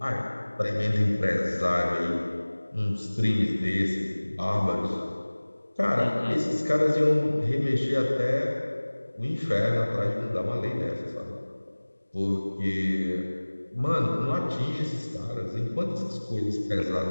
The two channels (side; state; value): both; inverted; correlation -1.00